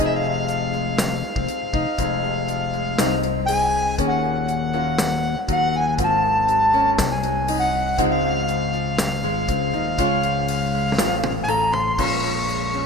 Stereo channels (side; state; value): both; normal; correlation 0.50